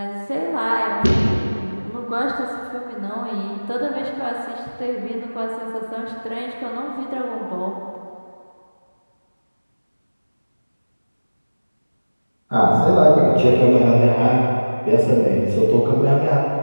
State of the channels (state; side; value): inverted; both; correlation -1.00